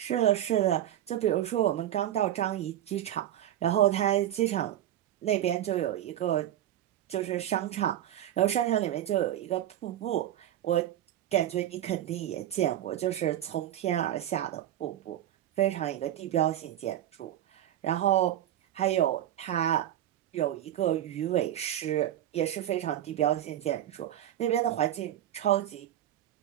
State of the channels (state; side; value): quieter; left; 12.1 dB